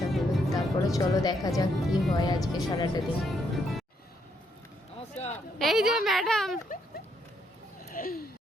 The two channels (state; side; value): normal; both; correlation 0.74